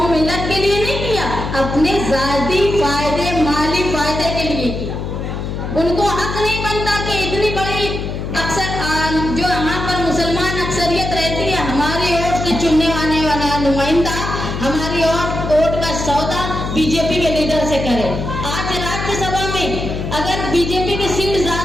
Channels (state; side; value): noise; left; hum, 5 dB below the sound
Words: मिल्लत के लिए नहीं किया, अपने जाती फायदे, माली फायदे के लिए किया। उनको हक नहीं बनता कि इतनी बड़ी अक्सर जो यहाँ पर मुसलमान अक्सरियत रहती है, हमारी वोट से चुनने वाला नुमाइंदा हमारी वोट का सौदा बीजेपी के लीडर से करे। आज राज्यसभा में अगर बीजेपी की सीट